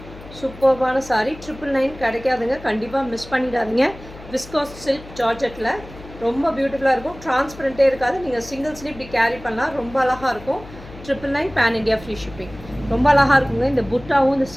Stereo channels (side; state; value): left; noise; hum, 17 dB below the sound